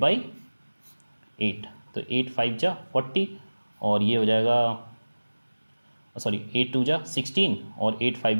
8, तो 8 5 जा 40 और ये हो जाएगा, सॉरी 8 2 जा 16 और 8 5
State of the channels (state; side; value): inverted; both; correlation -1.00